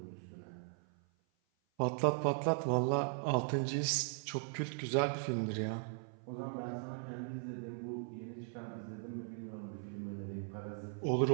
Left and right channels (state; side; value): silent; left; 52 dB below the other